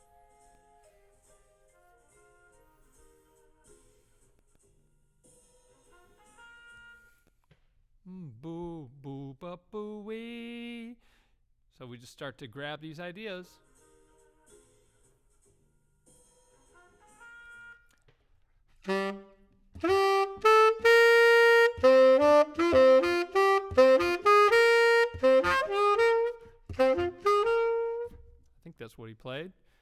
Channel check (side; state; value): both; identical; correlation 1.00